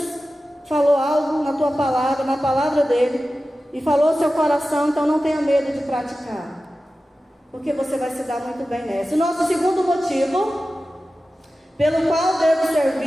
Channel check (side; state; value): both; normal; correlation 0.94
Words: falou algo na tua palavra, na palavra dele, e falou ao seu coração, então não tenha medo de praticar, porque você vai se dar muito bem nessa. O nosso segundo motivo pelo qual devo